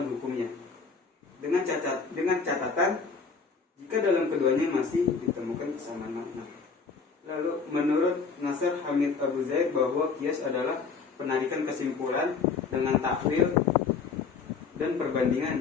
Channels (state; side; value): quieter; right; 5.1 dB